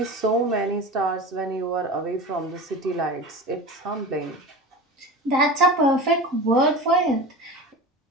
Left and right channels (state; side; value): normal; both; correlation 0.31